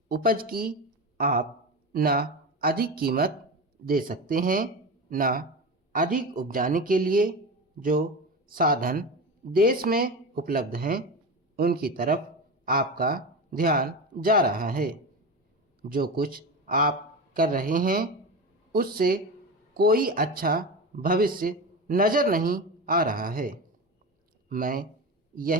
उपज की आप न अधिक कीमत दे सकते हैं न अधिक उपजाने के लिए जो साधन देश में उपलब्ध हैं उनकी तरफ आपका ध्यान जा रहा है। जो कुछ आप कर रहे हैं उससे कोई अच्छा भविष्य नज़र नहीं आ रहा है। मैं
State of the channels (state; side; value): normal; both; correlation 0.24